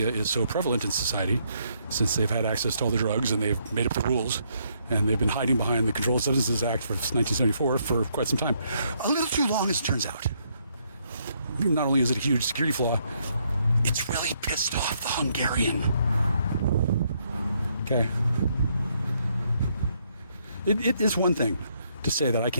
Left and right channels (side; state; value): both; inverted; correlation -0.72